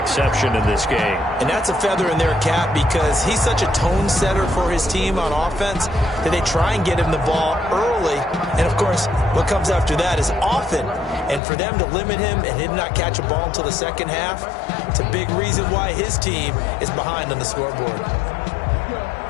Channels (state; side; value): drops out; right; at 11.4 s